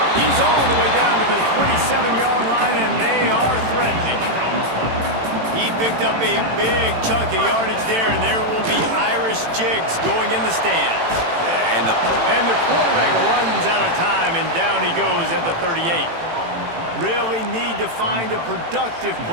He's all the way down to the 27-yard line, and they are threatening. He picked up a big chunk of yardage there, and there will be Irish jigs going in the stands. And the quarterback runs out of time, and down he goes at the 38. Really need to find a productive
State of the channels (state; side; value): late; left; 18 ms